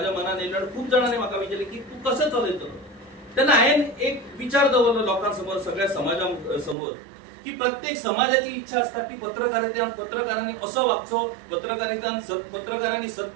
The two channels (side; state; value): left; drops out; at 6.8 s